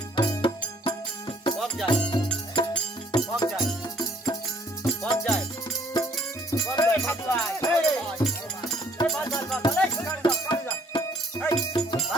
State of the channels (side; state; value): both; normal; correlation 0.60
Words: কম যায় কম যায় কম যায়।